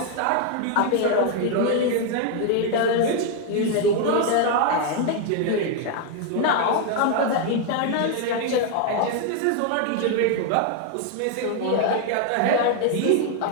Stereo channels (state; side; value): different; both; correlation 0.00